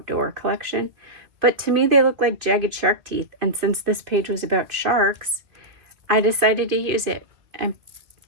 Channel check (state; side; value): late; left; 2.5 ms